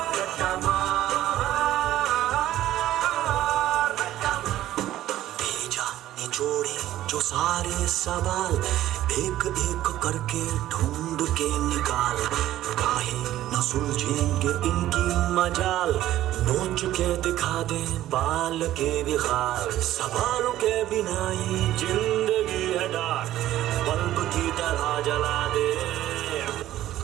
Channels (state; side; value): quieter; left; 13.7 dB